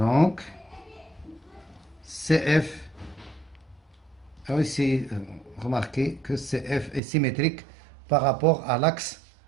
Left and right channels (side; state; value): left; drops out; at 7.0 s